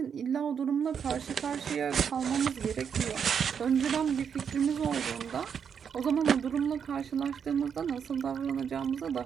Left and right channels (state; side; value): quieter; left; 7.3 dB